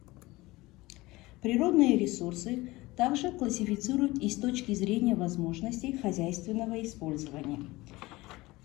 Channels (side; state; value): right; quieter; 20.4 dB